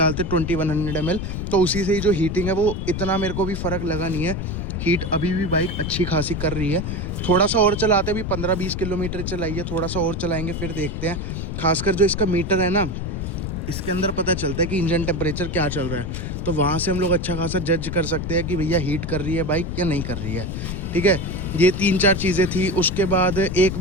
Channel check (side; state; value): left; noise; rumble, 4 dB below the sound